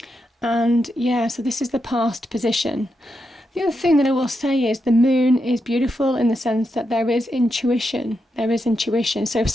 And yeah, so this is the past position. The other thing that I will say is the moon is beautiful in the sense that there is intuition. There is intuition. So if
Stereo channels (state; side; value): normal; both; correlation 0.85